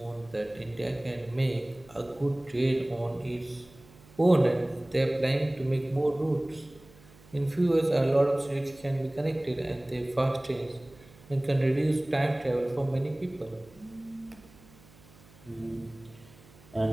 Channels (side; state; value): right; noise; hum, 25 dB below the sound